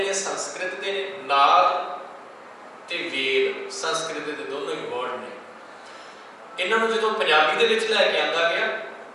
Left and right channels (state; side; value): identical; both; correlation 1.00